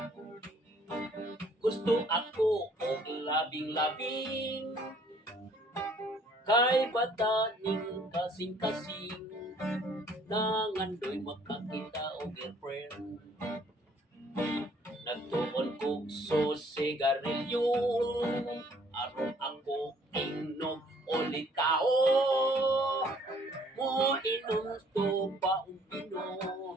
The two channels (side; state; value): both; normal; correlation 0.60